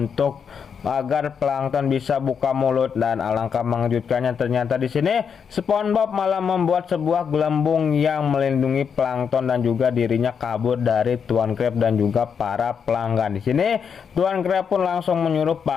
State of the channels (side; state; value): right; quieter; 6.8 dB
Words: agar plankton bisa buka mulut, dan alangkah mengejutkannya ternyata di sini SpongeBob malah membuat sebuah gelembung yang melindungi plankton dan juga dirinya kabur dari Tuan Crab dan juga para pelanggan. Di sini Tuan Crab pun langsung menyuruh